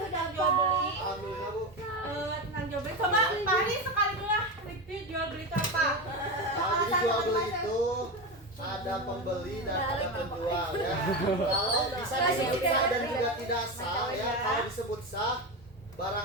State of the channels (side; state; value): both; normal; correlation 0.18